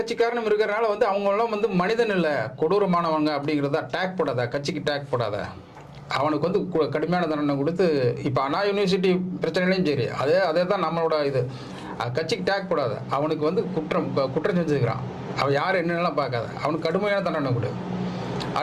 இருக்கிறனால வந்து அவங்களாம் வந்து மனிதன் இல்லை, கொடூரமானவங்க அப்படிங்கிறதா. டேக் போடாத, கட்சிக்கு டேக் போடாத, அவனுக்கு வந்து கடுமையான தண்டனை கொடுத்து. இப்போ அண்ணா யூனிவர்சிட்டி பிரச்சனையிலையும் சரி, அதே தான் நம்மளோட இது. கட்சிக்கு டேக் போடாத, அவனுக்கு வந்து குற்றம் செஞ்சுக்கிறான், அவன் யார் என்னென்னலாம் பார்க்காத, அவனுக்கு கடுமையான தண்டனை கொடு.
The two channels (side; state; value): both; identical; correlation 1.00